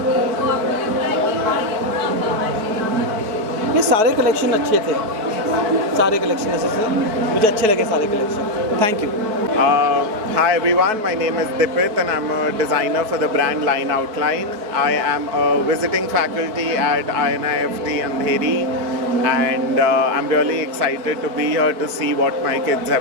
ये सारे कलेक्शन अच्छे थे, सारे कलेक्शन ऐसे थे, मुझे अच्छे लगे सारे collection. Thank you. Hi everyone, my name is Dipit and I'm a designer for the brand Line Outline. I am a visiting faculty at INIFT Andheri, and I'm really excited to be here to see what my kids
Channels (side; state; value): left; late; 4.6 ms